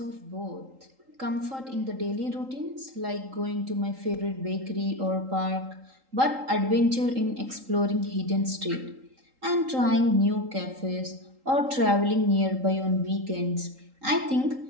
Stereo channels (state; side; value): late; left; 3.8 ms